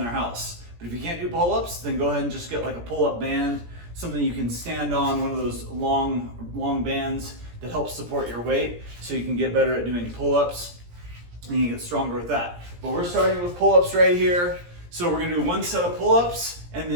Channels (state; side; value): late; left; 17 ms